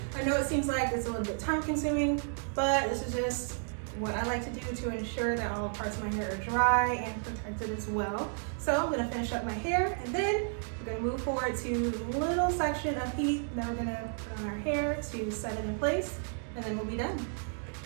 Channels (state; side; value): silent; left; 56 dB below the other